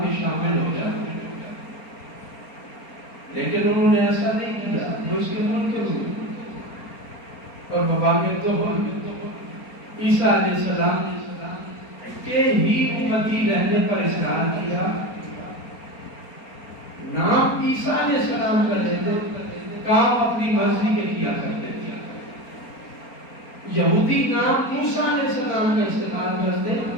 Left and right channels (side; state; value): right; late; 4.3 ms